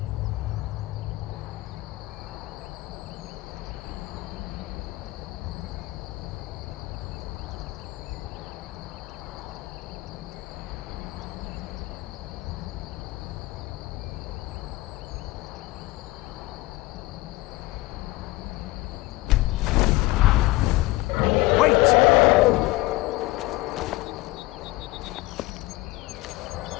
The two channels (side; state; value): right; quieter; 20.4 dB